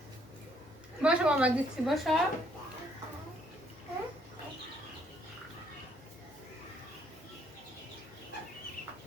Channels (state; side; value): normal; both; correlation 0.68